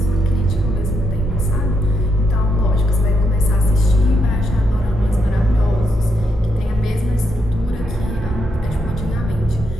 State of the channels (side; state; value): both; normal; correlation 0.80